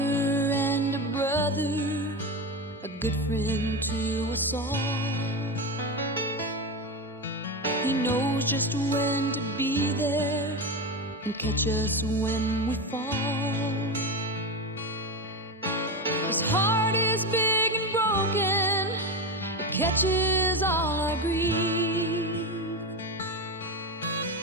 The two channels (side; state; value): both; normal; correlation 0.18